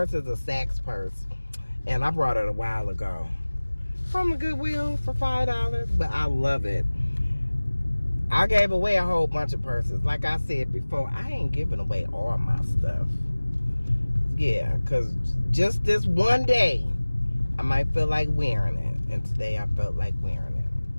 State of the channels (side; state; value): both; inverted; correlation -1.00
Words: is a Saks purse, and I brought it a while ago. from the Goodwill for $5, but I love it. I gave away a whole bunch of purses. Like I said before, I ain't giving away all my stuff. Yeah, because just this one day, I might feel like wearing it. And today I felt like wearing it.